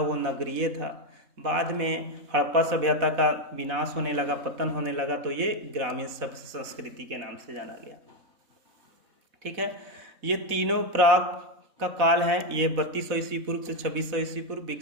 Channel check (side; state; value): left; late; 4.1 ms